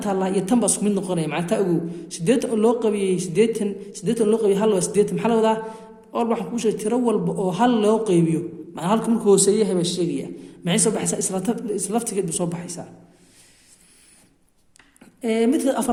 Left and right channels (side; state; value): both; identical; correlation 1.00